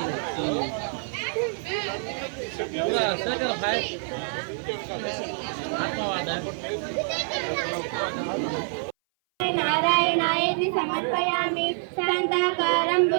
नारायणायति समर्पयामि शान्ताकारं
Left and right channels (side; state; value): left; silent; 58 dB below the other